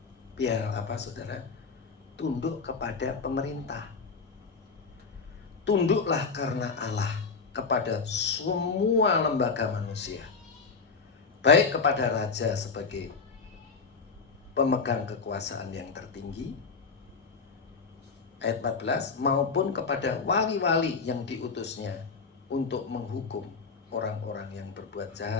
biar apa saudara? Tunduk kepada pemerintah. Tunduklah karena Allah kepada semua lembaga manusia, baik kepada raja sebagai pemegang kekuasaan yang tertinggi, ayat 14, maupun kepada wali-wali yang diutusnya untuk menghukum orang-orang yang berbuat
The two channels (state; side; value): quieter; right; 4.9 dB